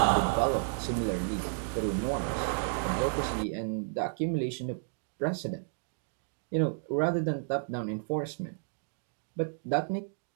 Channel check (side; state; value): left; silent; digital silence